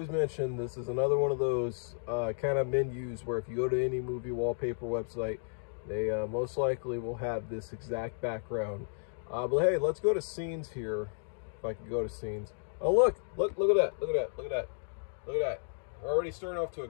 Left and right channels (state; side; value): silent; right; digital silence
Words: mention, this is another one of those kind of menus where if you go to any movie wallpaper website, they most likely will have this exact background. But hey, let's go to scenes here. If I can go to scenes. Oh, look at that, look at that. We're already starting off to a